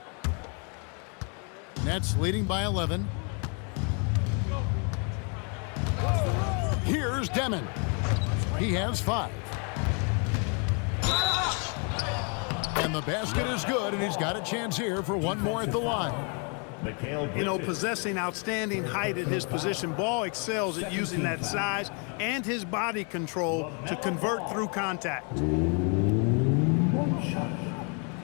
Nets leading by 11. Here's Demon. He has 5. And the basket is good, and he's got a chance here for one more at the line. You know, possessing outstanding height at his position, Ball excels at using that size and his body control to convert through contact.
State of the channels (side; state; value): right; quieter; 37.5 dB